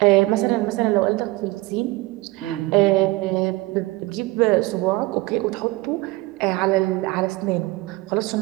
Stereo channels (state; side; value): quieter; left; 20.8 dB